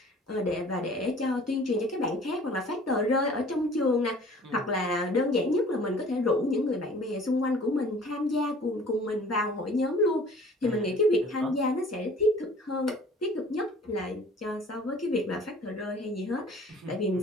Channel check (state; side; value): normal; both; correlation 0.49